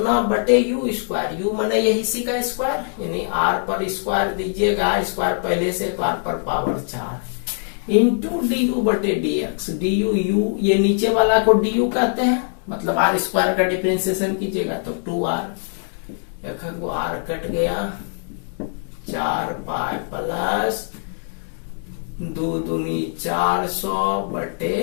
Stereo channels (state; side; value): silent; right; 64 dB below the other